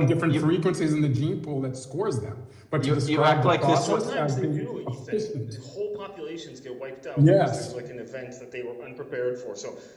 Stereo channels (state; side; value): identical; both; correlation 1.00